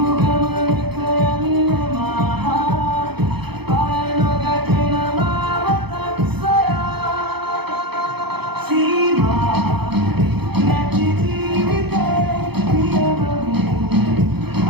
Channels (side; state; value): left; late; 0.97 ms